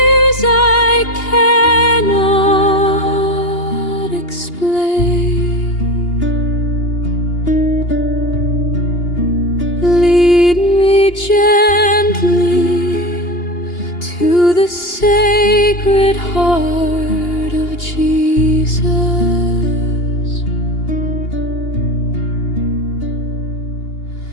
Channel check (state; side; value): late; right; 2.8 ms